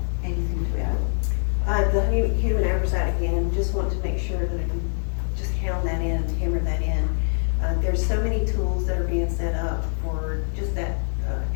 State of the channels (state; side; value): silent; right; 62 dB below the other